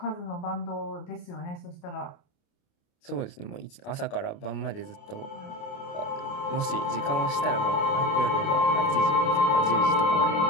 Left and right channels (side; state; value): right; late; 29 ms